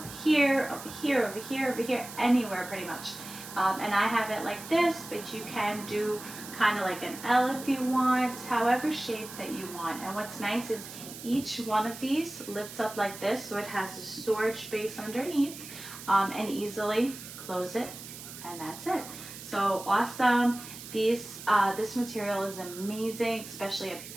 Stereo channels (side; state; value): right; noise; hiss, 13 dB below the sound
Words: here, over here, over here, over here, anywhere pretty much. And I have it like this, but you can do kind of like an L if you want, however shape that you want. And what's nice is each one of these lifts up like this, so it has a storage space underneath, and easily close it, and that's it. So awesome. This material is amazing, especially if